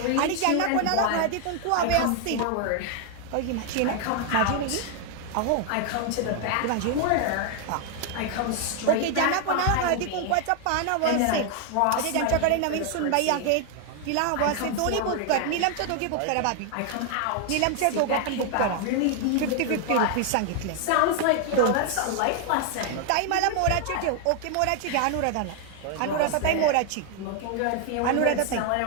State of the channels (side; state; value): both; different; correlation 0.00